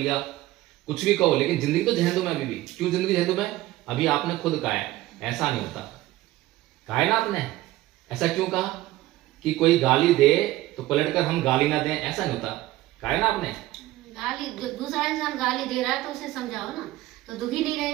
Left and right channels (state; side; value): quieter; left; 16.6 dB